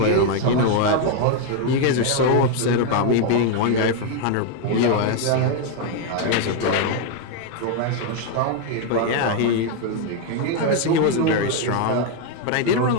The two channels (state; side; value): different; both; correlation 0.01